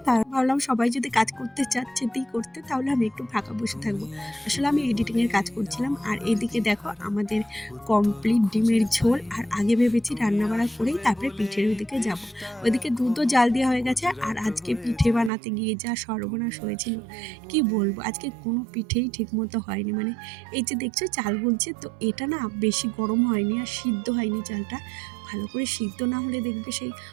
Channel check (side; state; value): left; drops out; at 15.3 s